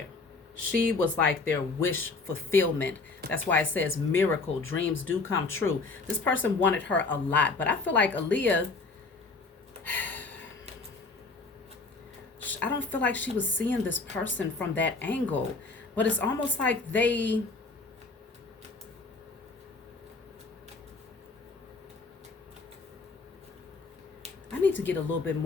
She was like their wish fulfillment. That's why it says miracle, dreams do come true. This person wanted her a lot, but I feel like Aaliyah, I don't feel like she was seeing this person from that angle, but it's almost like I need to get a little bit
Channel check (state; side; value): quieter; right; 3.9 dB